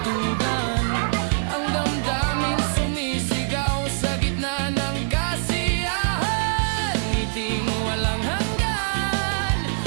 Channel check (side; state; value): left; silent; digital silence